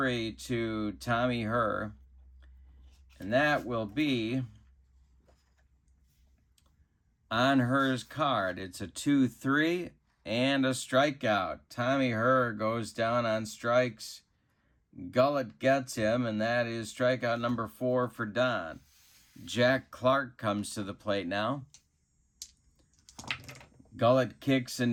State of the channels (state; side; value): identical; both; correlation 1.00